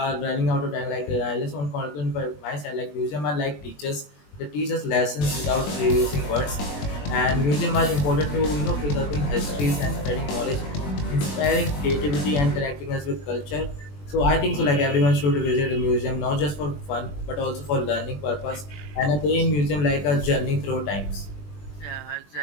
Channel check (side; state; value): right; late; 20 ms